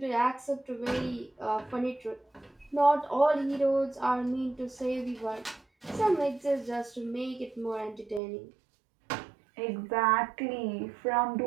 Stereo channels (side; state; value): left; drops out; at 8.2 s